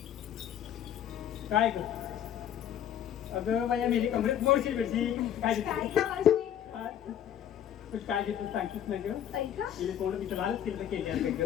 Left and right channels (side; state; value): right; quieter; 10.1 dB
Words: काय ग? अगं बाया मेरी कमरेत मोडशील बेडशी. काय काय घेतलं? ग मावशी? तू काय घेतलं सांगतीस ना ग? ऐका गेले कोण तिचं लालच केलं केली